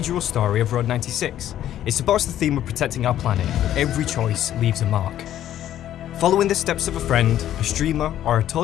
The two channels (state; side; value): quieter; right; 11.8 dB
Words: story of Road 96. It supports the theme of protecting our planet, but every choice leaves a mark. Following the steps of a friend, a streamer, or a